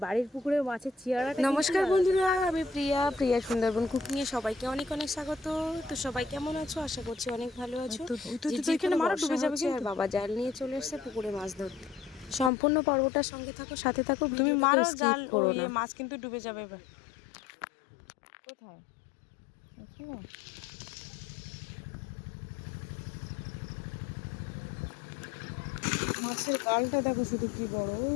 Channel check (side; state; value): right; drops out; at 12.5 s